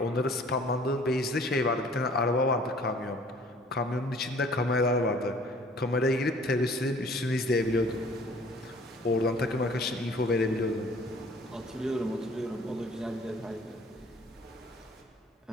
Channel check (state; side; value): normal; both; correlation 0.53